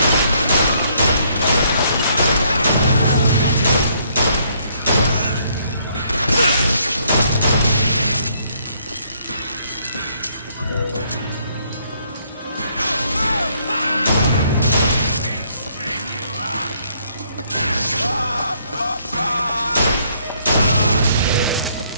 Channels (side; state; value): both; inverted; correlation -0.68